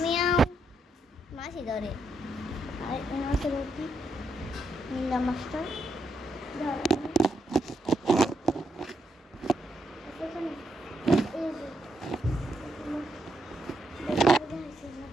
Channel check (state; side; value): normal; both; correlation 0.80